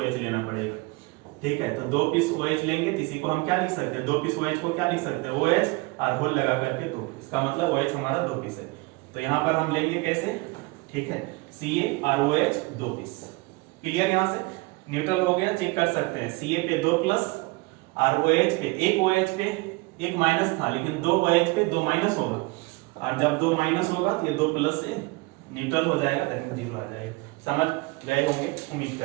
लेना पड़ेगा। ठीक है, तो 2 पीस OH लेंगे, तो इसी को हम क्या लिख सकते हैं, 2 पीस OH को क्या लिख सकते हैं OH और होल लगा करके 2, इसका मतलब OH हमारा 2 पीस है। तो यहाँ पर हम लेंगे कैसे, ठीक है, CaROH 2 पीस। क्लियर, यहाँ से न्यूट्रल हो गया, चेक कर सकते हैं। Ca पे 2 प्लस और OH पे एक OH पे 1 माइनस था, लेकिन 2 OH पे 2 माइनस होगा, और जब 2 माइनस होगा तो ये 2 प्लस से न्यूट्रल हो जाएगा, दैट 0 आ जाएगा। समझ गए होंगे, उम्मीद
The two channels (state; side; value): quieter; left; 25.0 dB